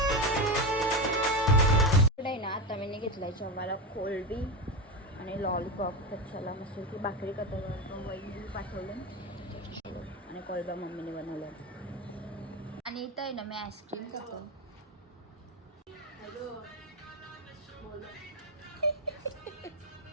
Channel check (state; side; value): normal; both; correlation 0.16